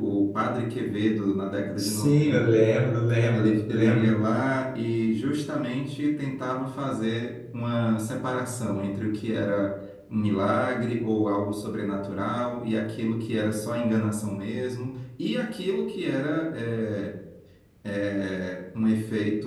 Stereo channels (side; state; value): both; identical; correlation 1.00